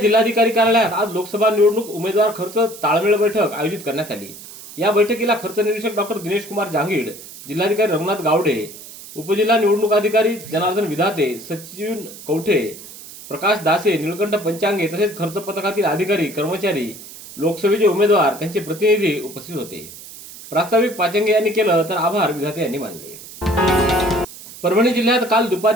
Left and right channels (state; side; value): noise; right; hiss, 16 dB below the sound